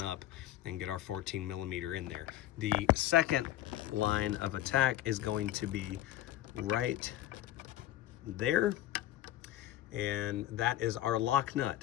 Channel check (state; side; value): quieter; right; 14.0 dB